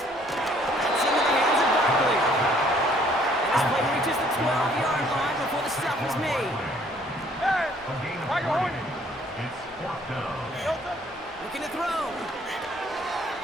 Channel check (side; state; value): both; normal; correlation 0.61